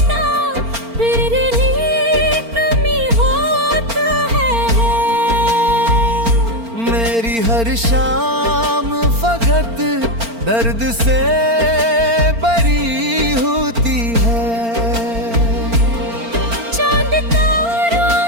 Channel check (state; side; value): late; left; 4.4 ms